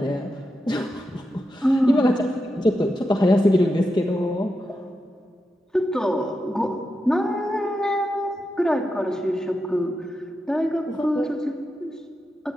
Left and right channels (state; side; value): normal; both; correlation 0.88